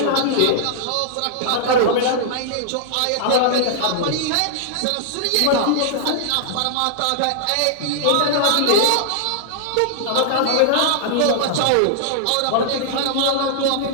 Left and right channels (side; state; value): both; different; correlation -0.01